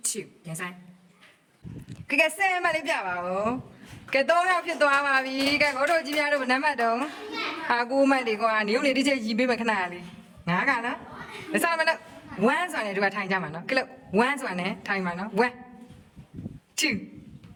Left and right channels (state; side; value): identical; both; correlation 1.00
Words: 2 yes Iကဲဆဲမလေးပြပါဦးကဲ3ယောက်ဖြစ်သွားပါပြီကဲကိုတို့ကြီးများတို့နံပါတ်တော့ဟာ9မှတ်ဒီကွာနေုံနေတစ်ချက်ရီးပေးမယ်ခဏလေး9ကနော်မစားမလို့1ဆိုတာနဲ့တို့ကထိုင်ကြမှာနော်ကဲလို့1ဆိုတာနဲ့ထိုင်မှာနော်1 2